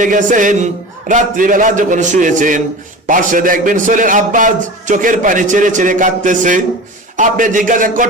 গেছেন, রাত্রিবেলা যখন শুয়েছেন, পাশে দেখবেন ছেলের আব্বা চোখের পানি ছেড়ে ছেড়ে কাঁদতেছে। আপনি জিজ্ঞাসা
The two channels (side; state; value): both; normal; correlation 0.33